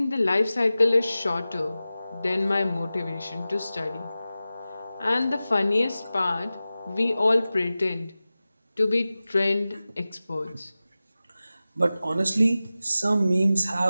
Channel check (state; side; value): inverted; both; correlation -0.95